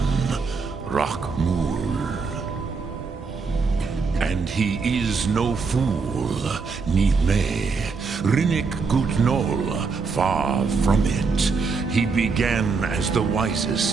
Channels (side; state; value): left; quieter; 4.8 dB